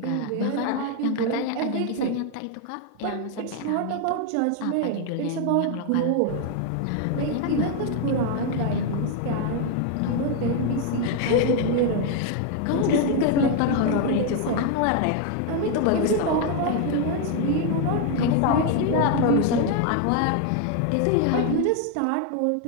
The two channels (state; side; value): different; both; correlation 0.01